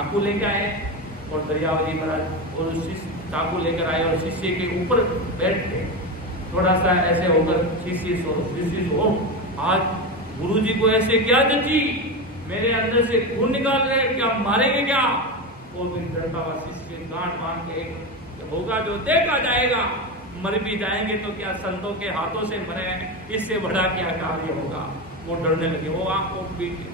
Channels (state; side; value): normal; both; correlation 0.18